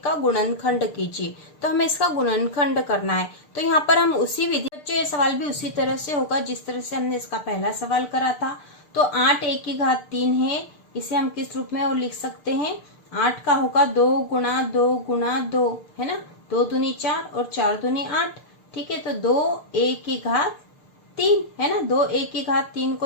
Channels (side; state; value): right; late; 6.7 ms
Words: का गुणनखंड कीजिए, तो हमें इसका गुणनखंड करना है। तो यहाँ पर हम उसी विधि, बच्चों ये सवाल भी उसी तरह से होगा जिस तरह से हमने इसका पहला सवाल करा था। तो 8a की घात 3 है, इसे हम किस रूप में और लिख सकते हैं। 8 का होगा 2 गुणा 2 गुणा 2, है ना। 2 दूनी 4 और 4 दूनी 8, ठीक है। तो 2a की घात 3 है ना। 2a की घात 3